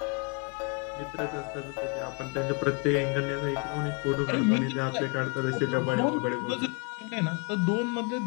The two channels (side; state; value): right; quieter; 32.2 dB